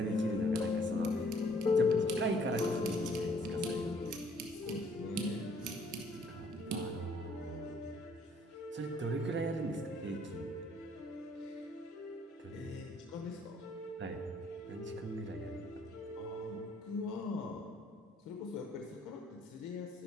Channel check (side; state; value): both; normal; correlation 0.62